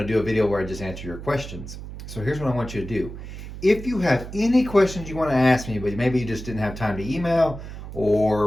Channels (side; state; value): right; noise; hum, 11 dB below the sound